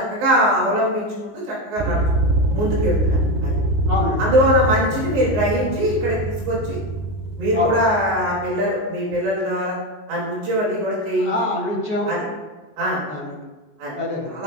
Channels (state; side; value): late; left; 19 ms